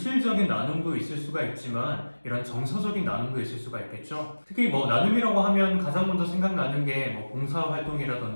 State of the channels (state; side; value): inverted; both; correlation -1.00